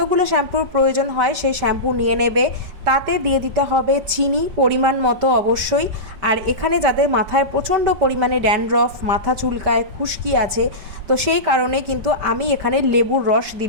শ্যাম্পুর প্রয়োজন হয় সেই শ্যাম্পু নিয়ে নেবে। তাতে দিয়ে দিতে হবে চিনি পরিমাণ মতো অবশ্যই। আর এখানে যাদের মাথায় প্রচণ্ড পরিমাণে ড্যান্ড্রফ, মাথা চুলকায়, খুশকি আছে, তো সেই কারণে কিন্তু আমি এখানে লেবুর রস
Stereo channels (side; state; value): left; late; 5.1 ms